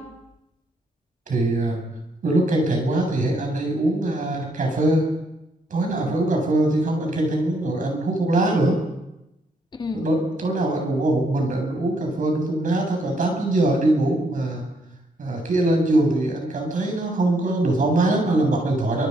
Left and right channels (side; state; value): both; normal; correlation 0.72